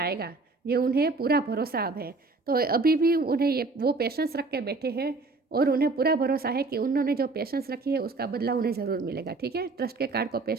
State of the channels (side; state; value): left; quieter; 3.7 dB